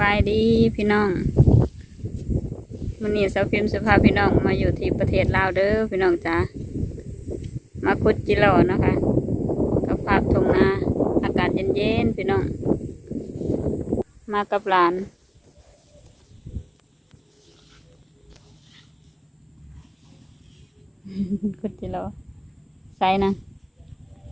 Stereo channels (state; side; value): identical; both; correlation 1.00